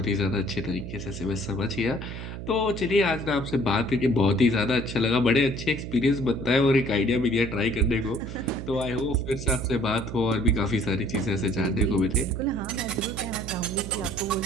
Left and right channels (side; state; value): right; noise; hum, 8 dB below the sound